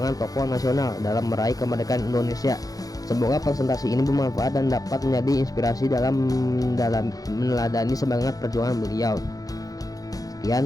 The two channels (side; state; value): right; late; 0.18 ms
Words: tokoh nasional dalam meraih kemerdekaan Indonesia. Semoga presentasi ini bermanfaat dan dapat menjadi inspirasi dalam meneladani semangat perjuangan beliau.